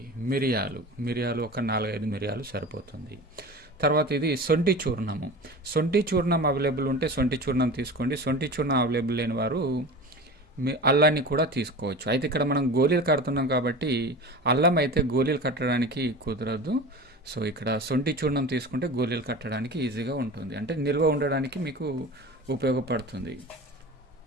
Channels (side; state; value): both; normal; correlation 0.33